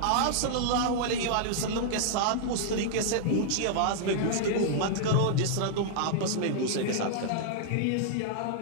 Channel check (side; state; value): both; different; correlation -0.01